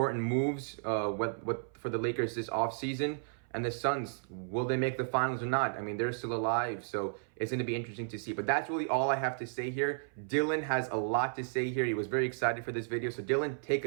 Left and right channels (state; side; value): silent; left; 55 dB below the other